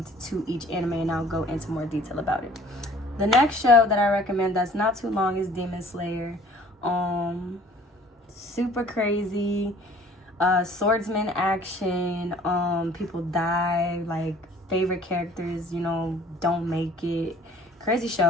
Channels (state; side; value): normal; both; correlation 0.52